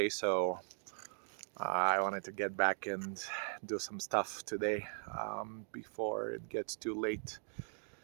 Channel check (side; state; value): left; silent; digital silence